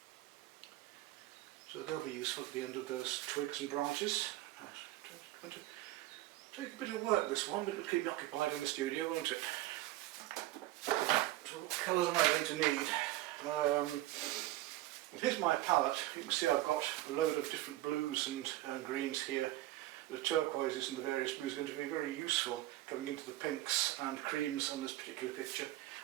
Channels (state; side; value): quieter; left; 16.5 dB